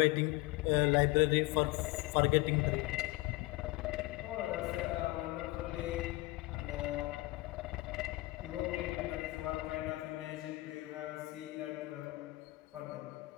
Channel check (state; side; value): quieter; right; 20.9 dB